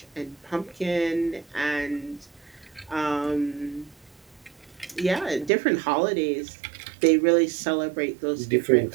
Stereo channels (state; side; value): drops out; left; at 5.5 s